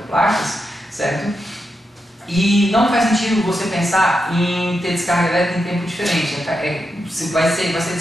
certo? E não faz sentido você pensar em ter descarga elétrica em tempo diferente. Vai ser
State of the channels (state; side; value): normal; both; correlation 0.86